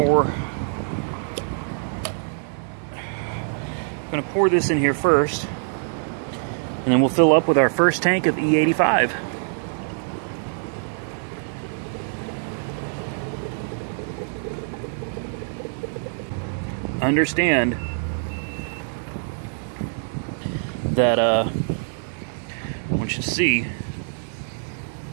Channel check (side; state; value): left; silent; 62 dB below the other